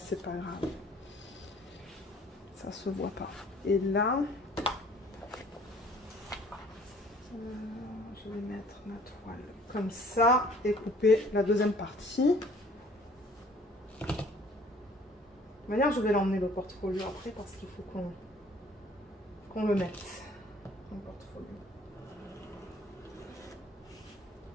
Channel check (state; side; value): normal; both; correlation 0.55